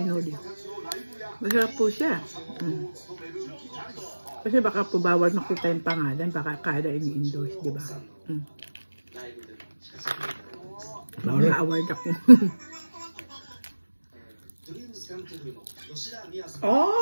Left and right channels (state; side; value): inverted; both; correlation -1.00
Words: nori. Masarap po siya. Kasi baka po bawal makita yung pangalan, baka kada ini-endorse, di ba? Baka award ako.